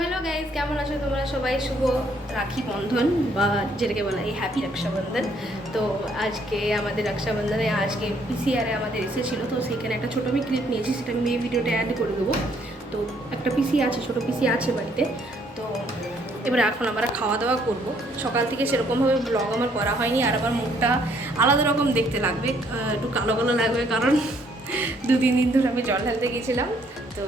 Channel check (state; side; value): normal; both; correlation 0.67